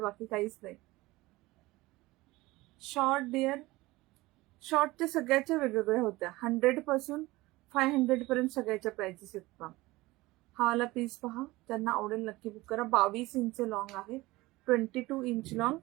बाकी काहीच नाही. शॉर्ट डिअर, शॉर्टच्या सगळ्याच्या वेगवेगळ्या होत्या. 100 पासून 500 पर्यंत सगळ्याच्या प्राइसेस आहेत मॅम. हा वाला पीस पहा, त्यांना आवडेल नक्की बुक करा. 22 इंच लॉंग आहे, 22 इंच लॉंग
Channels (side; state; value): left; quieter; 20.0 dB